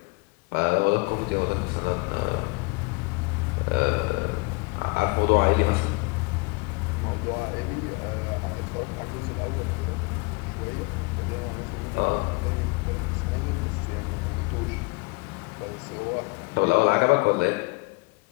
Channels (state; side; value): quieter; right; 27.2 dB